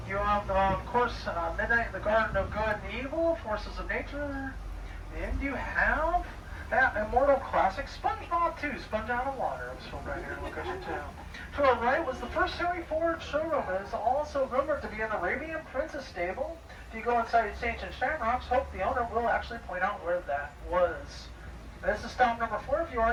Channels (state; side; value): identical; both; correlation 1.00